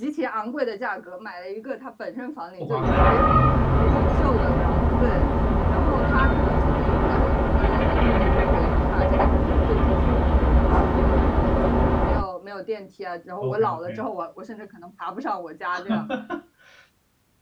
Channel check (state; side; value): identical; both; correlation 1.00